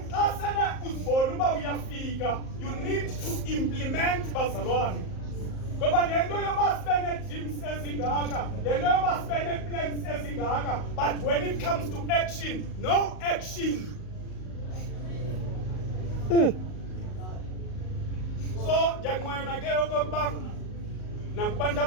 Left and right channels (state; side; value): late; right; 38 ms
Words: xa sele uzibona uba uyafika, you need to implement bazalwane. Ngoba le nto yoba sibe nee-dreams ezingaka, le nto yoba sibe nee-plans ezingaka, but when it comes to action, no action. So ndiyanqwena ke okokuba nakubantu